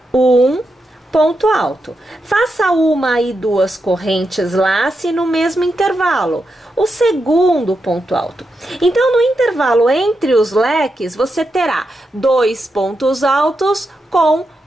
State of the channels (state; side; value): normal; both; correlation 0.86